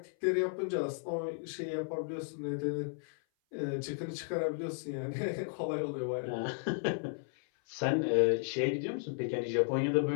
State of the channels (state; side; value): silent; right; 55 dB below the other